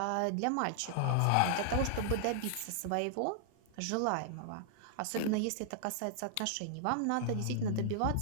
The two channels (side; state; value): both; different; correlation -0.01